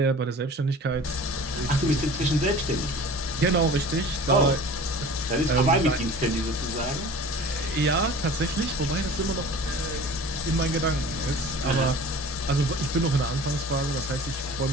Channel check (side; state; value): both; normal; correlation 0.42